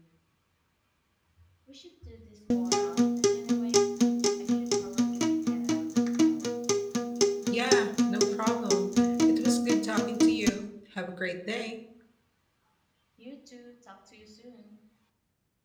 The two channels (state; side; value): identical; both; correlation 1.00